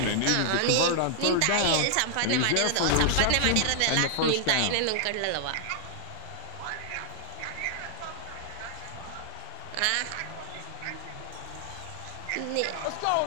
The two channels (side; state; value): both; different; correlation -0.01